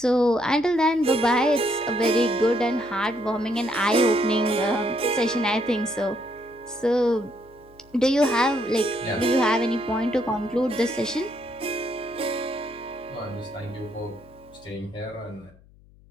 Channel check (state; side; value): noise; left; hum, 26 dB below the sound